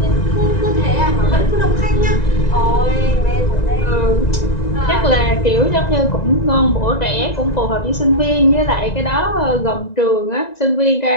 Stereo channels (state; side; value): late; right; 1.9 ms